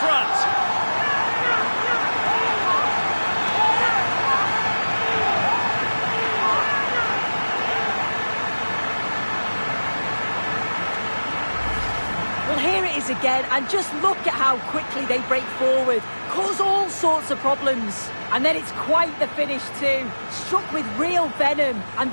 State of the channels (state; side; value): inverted; both; correlation -1.00